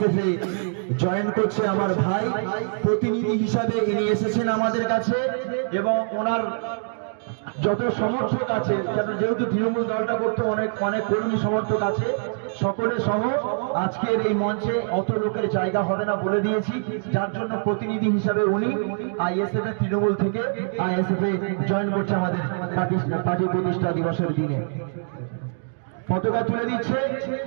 এ জয়েন করছে আমার ভাই। প্রতিনিধি হিসাবে ইনি এসেছেন আমাদের কাছে এবং ওনার যত সমর্থক আছে, যেহেতু তৃণমূল দলটা করতে অনেক কর্মী সমর্থক আছে, সকলে সহ আজকের এই মঞ্চে অত লোকের জায়গা হবে না বলে দিয়েছি, যার জন্য প্রতিনিধি হিসাবে উনি আইএসএফ এর তৃণমূল থেকে আইএসএফ এ জয়েন করছে আমাদের পার্টি প্রতিষ্ঠা দিবসের দিনে। পতাকা তুলে দিচ্ছে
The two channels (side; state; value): left; silent; digital silence